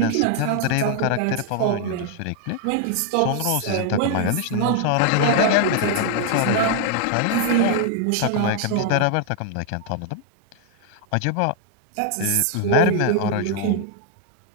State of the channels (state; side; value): different; both; correlation 0.00